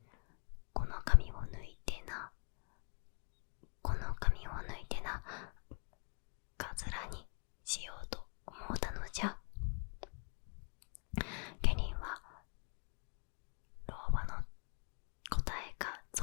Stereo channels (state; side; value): quieter; right; 39.7 dB